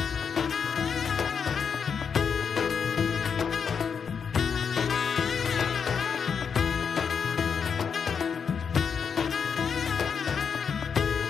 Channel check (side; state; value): right; quieter; 6.5 dB